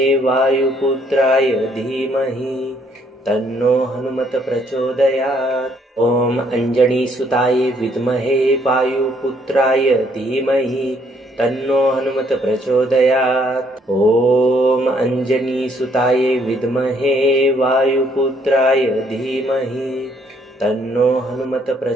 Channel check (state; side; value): normal; both; correlation 0.67